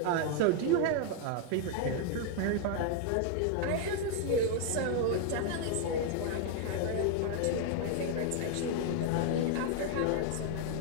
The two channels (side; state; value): both; different; correlation 0.00